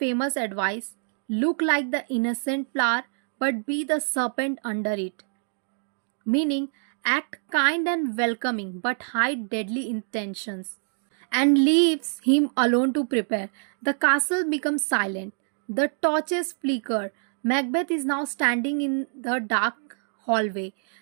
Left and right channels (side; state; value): left; silent; 61 dB below the other